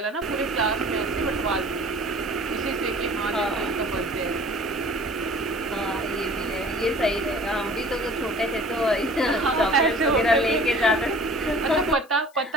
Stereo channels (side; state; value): left; noise; hiss, 29 dB below the sound